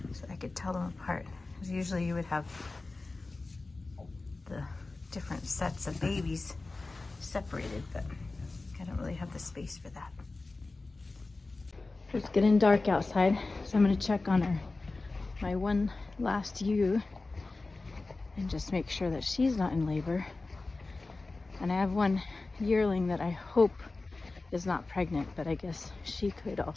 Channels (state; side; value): quieter; right; 3.4 dB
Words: so I could tell them apart. Because usually you would have the different sets of babies separated, but I don't really have the space for that. It's getting dark outside, so I'm going to check on my one last ewe and just make sure that she's not in labor. And I have one yearling that I hope is not pregnant, but I guess she could